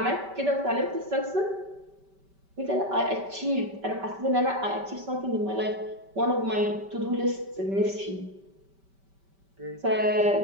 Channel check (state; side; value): late; left; 5.2 ms